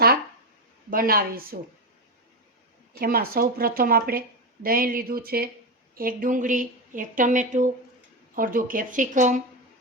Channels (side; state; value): both; normal; correlation 0.13